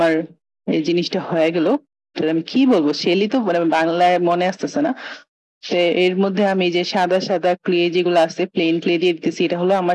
এই জিনিসটা হয়ে গেল। আমি কি বলবো, শেলই তো মানে বাংলায় মনে আসতেছে না। তো এর মধ্যে আমি যে সাদা সাদা ক্লে যেগুলো আছে প্লেন ক্লে দিয়ে দিতেছি। এটা হলো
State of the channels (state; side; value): identical; both; correlation 1.00